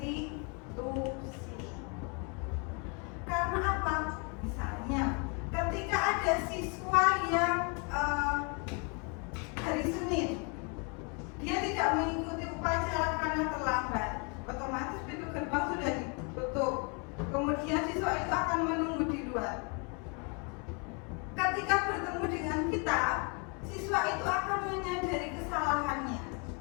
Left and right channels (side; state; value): right; quieter; 34.6 dB